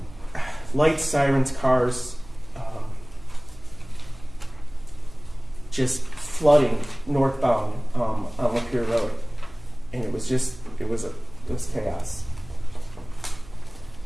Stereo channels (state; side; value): noise; right; hum, 20 dB below the sound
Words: lights, sirens, cars, just flooding northbound on Lapeer Road, and it was chaos.